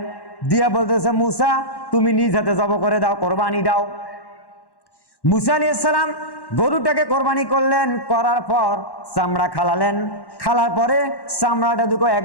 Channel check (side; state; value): right; late; 1.1 ms